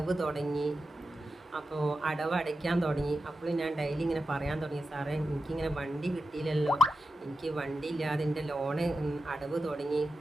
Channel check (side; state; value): both; normal; correlation 0.92